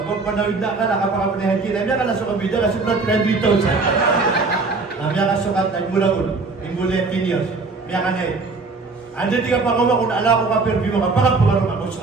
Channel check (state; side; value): quieter; left; 3.9 dB